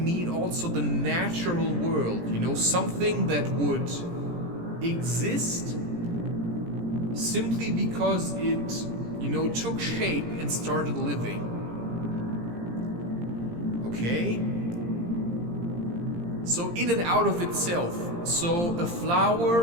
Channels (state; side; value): late; left; 17 ms